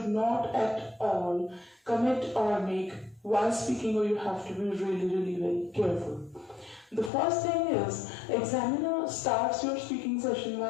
not at all commit or make while speaking, or you have to be really very careful. The first thing is, examiner starts your speaking session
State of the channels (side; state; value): right; drops out; at 7.1 s